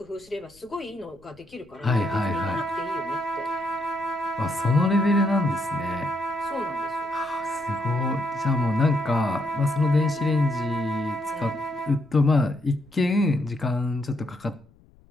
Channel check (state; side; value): noise; left; rumble, 29 dB below the sound